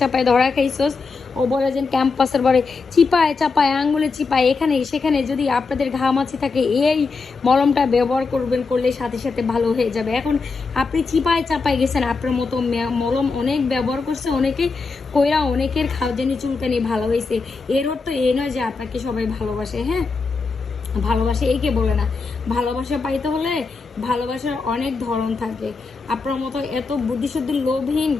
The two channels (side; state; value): right; quieter; 4.4 dB